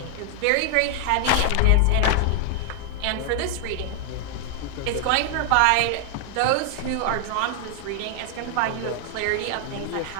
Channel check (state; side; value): different; both; correlation 0.00